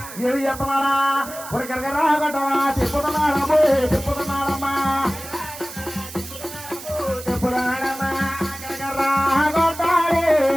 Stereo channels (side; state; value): right; noise; hiss, 13 dB below the sound